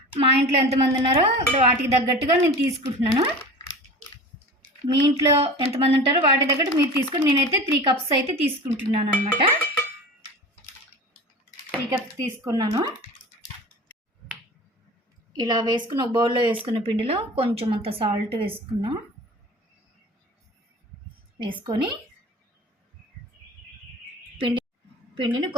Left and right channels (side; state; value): both; normal; correlation 0.36